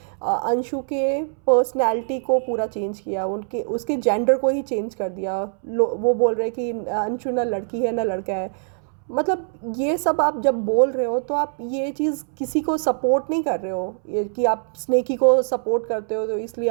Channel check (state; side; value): silent; left; 63 dB below the other